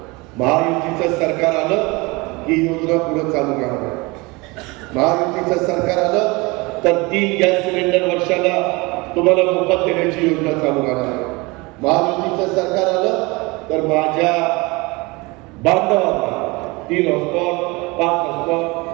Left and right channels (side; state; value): left; quieter; 25.1 dB